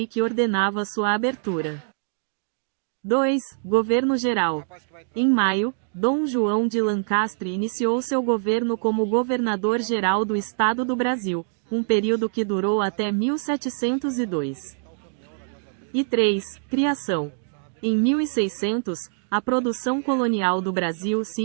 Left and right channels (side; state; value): left; silent; digital silence